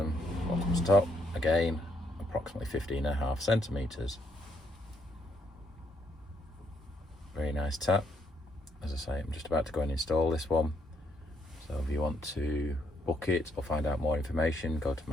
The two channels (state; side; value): normal; both; correlation 0.74